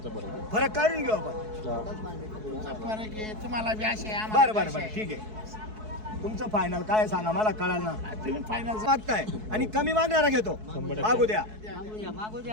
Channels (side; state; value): left; late; 4.7 ms